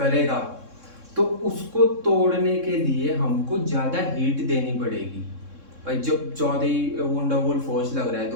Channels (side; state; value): left; late; 3.6 ms